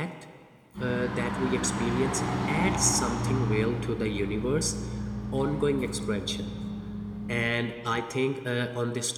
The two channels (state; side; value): identical; both; correlation 1.00